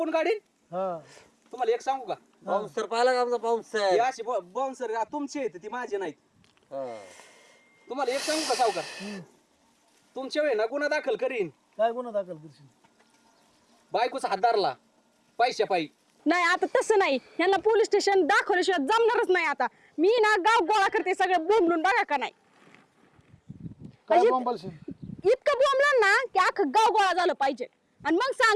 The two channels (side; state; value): both; identical; correlation 1.00